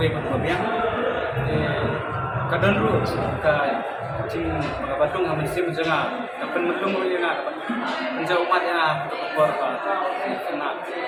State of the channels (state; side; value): identical; both; correlation 1.00